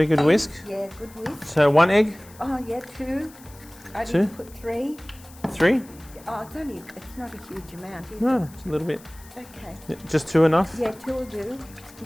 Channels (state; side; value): noise; left; hiss, 23 dB below the sound